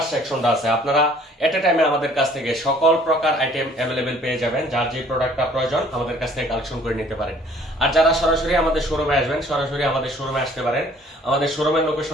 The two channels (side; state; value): both; normal; correlation 0.56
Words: সেকশনটা আছে। আপনারা এট এ টাইমে আমাদের কাছ থেকে সকল প্রকার আইটেম অ্যাভেলেবেল পেয়ে যাবেন। যার যে প্রোডাক্টটা প্রয়োজন আমাদের কাছ থেকে কালেকশন করে নিতে পারেন। আর যারা সরাসরি আমাদের শোরুমে আসবেন, সরাসরি আমাদের শোরুমে আসতে পারেন। আমাদের শোরুমের